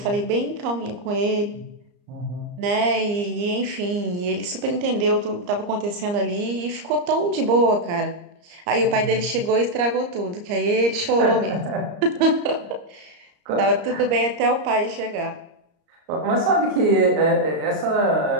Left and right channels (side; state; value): left; late; 34 ms